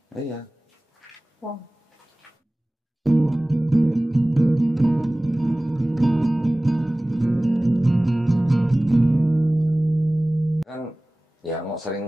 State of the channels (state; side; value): normal; both; correlation 0.98